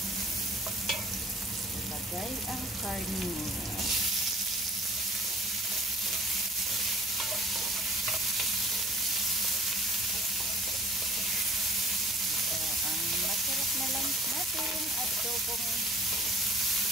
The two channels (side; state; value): both; normal; correlation 0.50